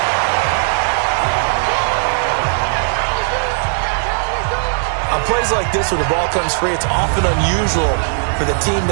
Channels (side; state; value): left; silent; digital silence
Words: On plays like this, when the ball comes free, it's often unusual for the team